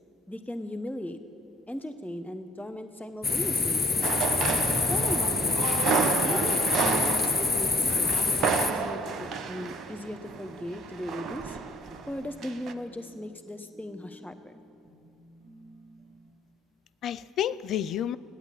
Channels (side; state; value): both; normal; correlation 0.54